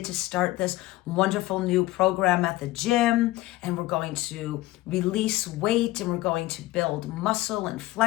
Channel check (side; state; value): right; quieter; 17.9 dB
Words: to start this wonderful new program at the gym, and we're going to release weight and we're going to build muscle and